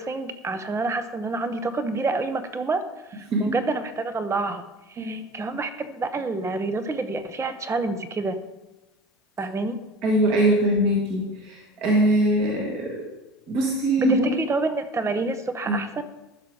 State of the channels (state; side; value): normal; both; correlation 0.40